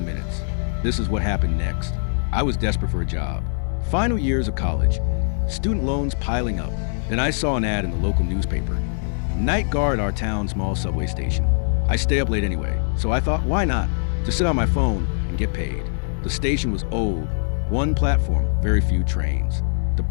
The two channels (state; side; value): silent; right; digital silence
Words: minutes. This is what happened next. I was desperate for a job. Final years of college, student loans piling up. Then I saw an ad in the local newspaper. Night guard our town's small subway station. I stay up late anyway, so I thought, why not? Just sit on my phone and get paid. The station was old, one platform, very few trains. The